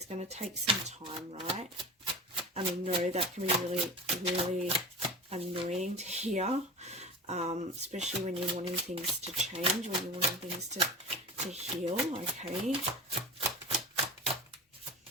going to take some time, right? I mean, no, that can be really, really annoying to hear. Especially when you're wanting things to change, when you're wanting things to heal, okay?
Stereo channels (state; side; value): normal; both; correlation 0.32